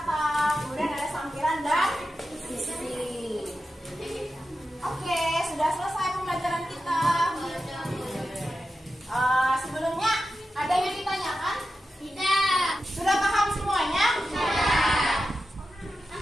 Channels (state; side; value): normal; both; correlation 0.91